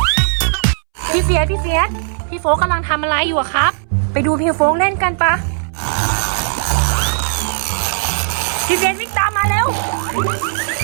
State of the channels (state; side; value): silent; left; 67 dB below the other